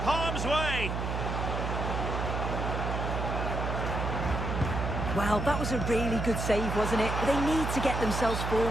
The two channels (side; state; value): right; noise; hum, 2 dB below the sound